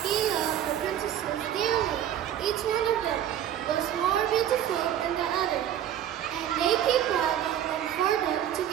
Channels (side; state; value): left; quieter; 10.7 dB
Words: He loved the princesses dearly. Each one of them was more beautiful than the other, and they keep planning for them to